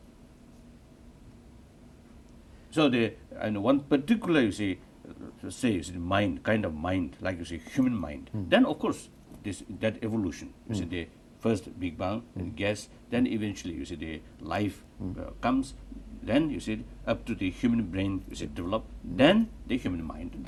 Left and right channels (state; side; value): identical; both; correlation 1.00